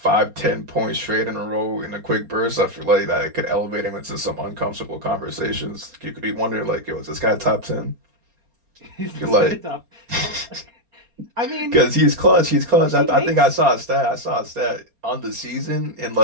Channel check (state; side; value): late; left; 4.3 ms